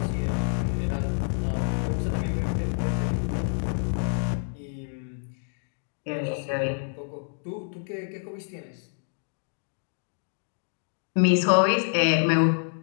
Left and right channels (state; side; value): silent; right; digital silence